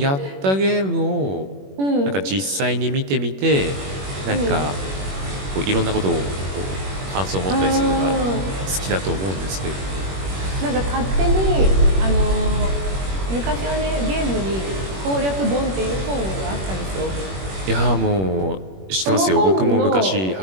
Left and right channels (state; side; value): late; left; 21 ms